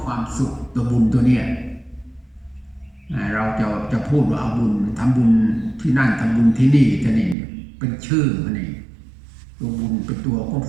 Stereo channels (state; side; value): drops out; left; at 7.4 s